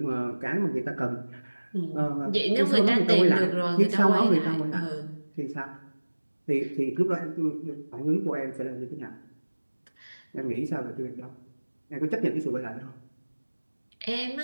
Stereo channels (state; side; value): inverted; both; correlation -1.00